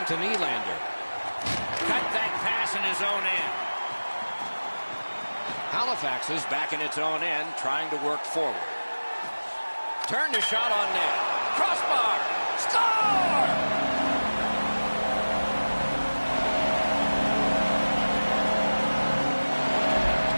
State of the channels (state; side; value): inverted; both; correlation -1.00